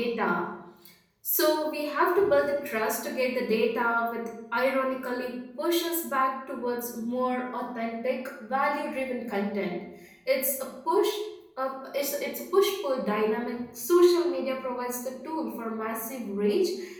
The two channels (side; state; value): both; identical; correlation 1.00